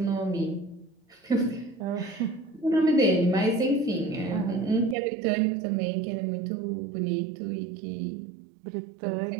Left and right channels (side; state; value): left; drops out; at 5.0 s